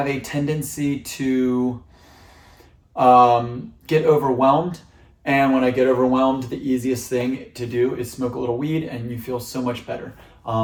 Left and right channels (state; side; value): identical; both; correlation 1.00